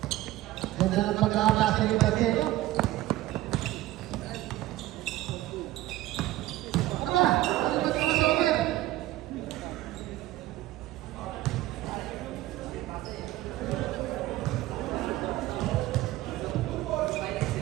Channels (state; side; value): quieter; left; 16.1 dB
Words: Ganda ng pag-aakasa ni Pacheco. Aba, ano ba ito sa open?